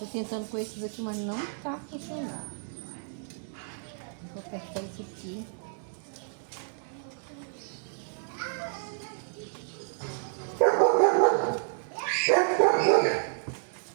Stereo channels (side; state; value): left; silent; digital silence